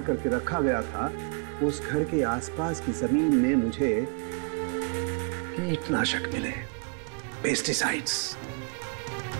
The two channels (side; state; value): left; quieter; 37.9 dB